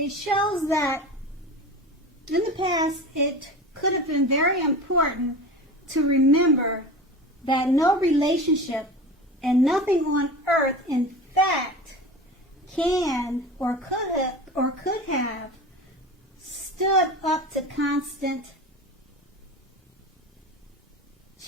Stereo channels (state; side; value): normal; both; correlation 0.32